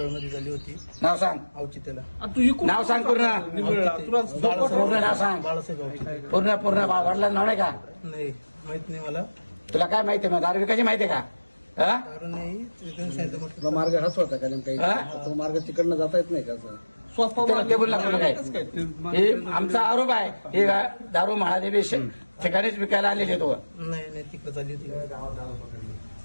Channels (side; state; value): both; inverted; correlation -1.00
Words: झाली होती, नाव सांग, औचित्याला. नाव सांग पूर्ण, पूर्ण नाव सांग, बाळासाहेब औचित्य. पूर्ण वडिलांचं नाव नाही का? नाही, माहित नाही मला. तुला काय माहिती मग दारू विकायची माहिती का? हा? दारू नाही, तिथून सांगितलं म्हटलं. तुला मार्ग हाच होता का नेमका? तुला मार्ग तिकडनं जाता येत नाही का? ते बोलला तुला काय? हे आमचा आरोप आहे, हे दारू महादेवी ठिकाणीच विकायला आलेले तो. नाही, तिकडे चालली होती,